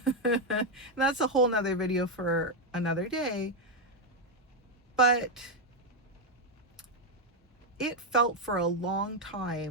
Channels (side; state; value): both; normal; correlation 0.03